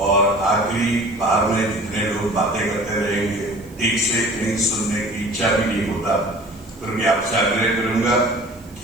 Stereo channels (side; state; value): right; noise; hiss, 26 dB below the sound